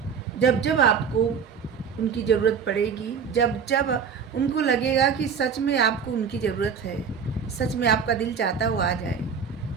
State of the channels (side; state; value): left; quieter; 6.5 dB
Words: जब जब आपको उनकी ज़रूरत पड़ेगी, जब जब उनको लगेगा कि सच में आपको उनकी ज़रूरत है, सच में आपका दिल चाहता है वो आ जाए,